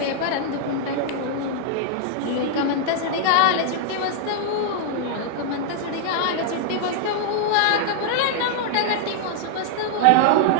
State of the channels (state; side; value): different; both; correlation 0.00